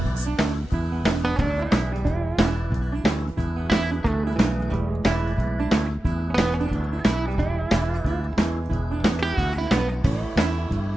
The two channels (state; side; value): normal; both; correlation 0.93